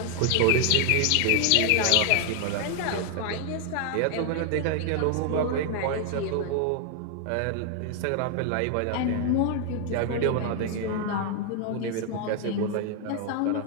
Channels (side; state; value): both; different; correlation 0.00